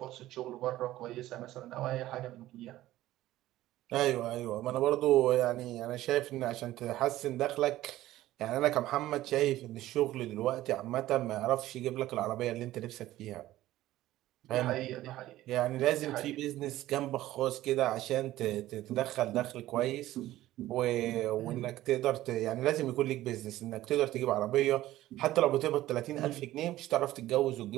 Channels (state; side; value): quieter; left; 15.2 dB